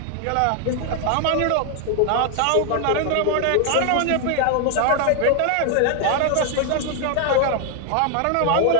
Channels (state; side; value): different; both; correlation 0.00